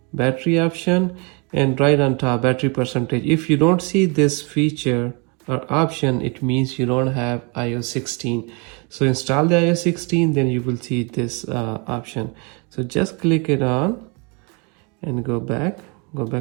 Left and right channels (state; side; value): quieter; left; 32.3 dB